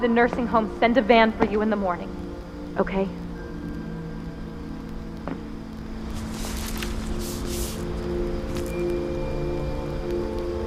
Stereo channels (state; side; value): identical; both; correlation 1.00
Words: the nursing home send a van for you in the morning, okay?